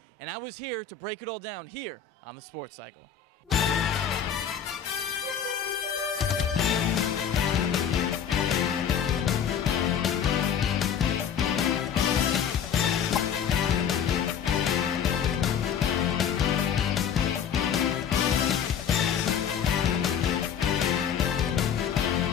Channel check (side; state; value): right; quieter; 8.0 dB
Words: and I was here to break it all down here on the Sports Cycle.